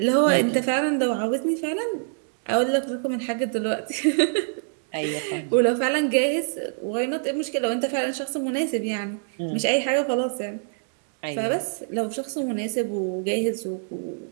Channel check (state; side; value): silent; left; digital silence